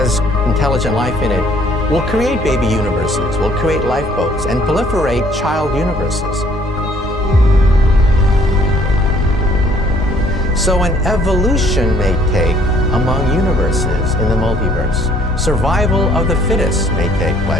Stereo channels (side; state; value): both; normal; correlation 0.61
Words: intelligent life in it will create baby universes, will create lifeboats, and proliferate child universes. So an evolution may take among universes in the multiverse. Survival of the fittest may take